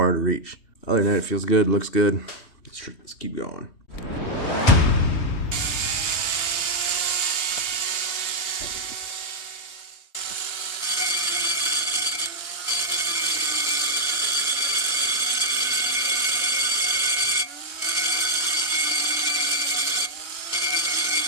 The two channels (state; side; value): late; right; 3.2 ms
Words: to reach. Other than that, it feels good, looks good. Let's keep going.